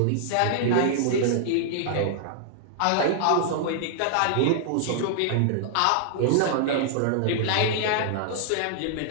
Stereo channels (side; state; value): both; different; correlation -0.01